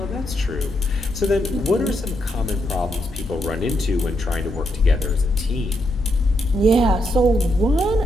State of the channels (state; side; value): normal; both; correlation 0.80